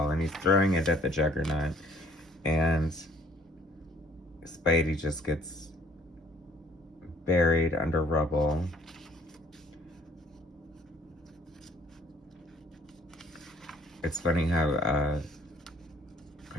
and he's throwing it at the Juggernaut. And Spidey just gets buried under rubble. It's funny how,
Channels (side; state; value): both; normal; correlation 0.59